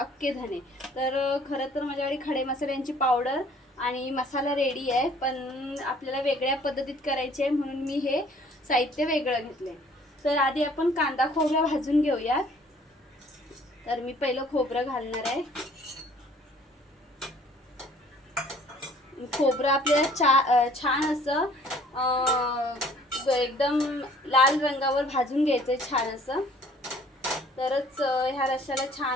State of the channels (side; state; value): both; normal; correlation 0.56